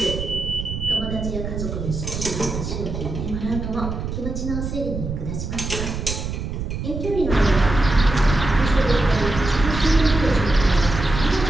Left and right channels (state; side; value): noise; right; rumble, 5 dB below the sound